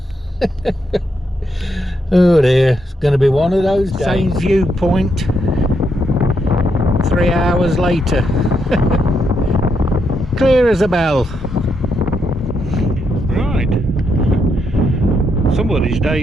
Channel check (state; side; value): normal; both; correlation 0.79